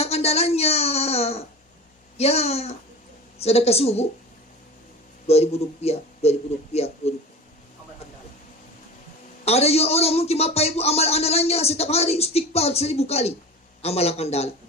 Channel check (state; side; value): normal; both; correlation 0.34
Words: andalannya, ya sedekah subuh, 2.000 rupiah. Ada juga orang mungkin Bapak Ibu amal andalannya setiap hari istighfar 1.000 kali, amalan andalan.